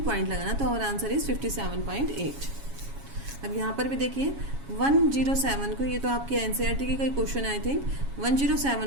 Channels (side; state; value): left; late; 7.2 ms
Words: पॉइंट लगाना। तो और आंसर इज 57.8। अब यहाँ पर भी देखिए 107 को, ये तो आपकी एनसीईआरटी की कोई क्वेश्चन आई थिंक,